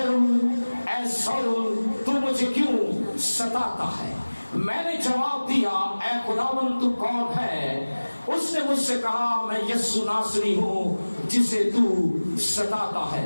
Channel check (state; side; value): inverted; both; correlation -1.00